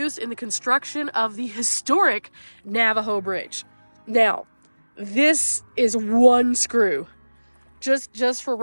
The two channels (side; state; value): both; inverted; correlation -1.00